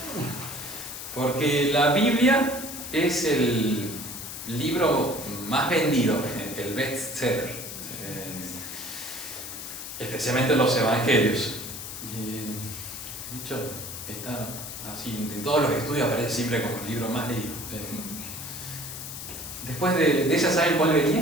porque la Biblia es el libro más vendido, el bestseller, especialmente los evangelios. De hecho, está así, en todos los estudios aparece siempre como el libro más leído. Después de esa, ¿saben cuál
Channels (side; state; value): left; noise; hiss, 9 dB below the sound